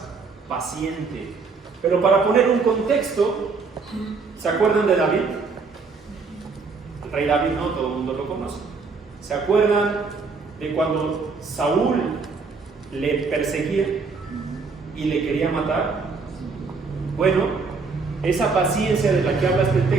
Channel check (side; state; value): left; quieter; 4.6 dB